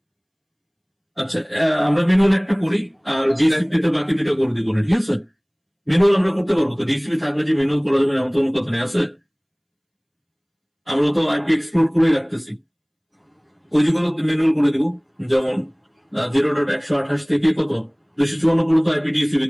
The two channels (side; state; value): both; identical; correlation 1.00